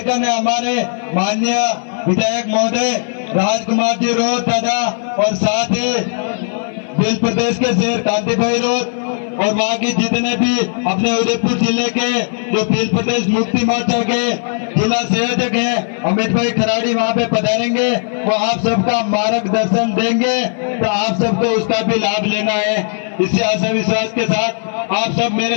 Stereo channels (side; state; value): right; silent; 57 dB below the other